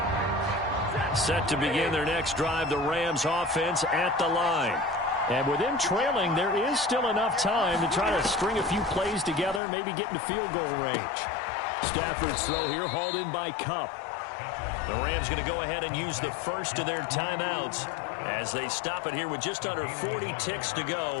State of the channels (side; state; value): right; drops out; at 9.6 s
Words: Set to begin their next drive, the Rams offense at the line. And with them trailing, there is still enough time to try to string a few plays together, maybe get into field goal range. Stafford's throw here hauled in by Kupp. The Rams going to go ahead and use the first of their timeouts as they stop it here with just under 40 ticks to